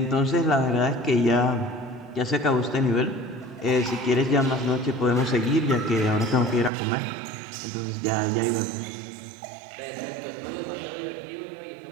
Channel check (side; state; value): left; drops out; at 6.7 s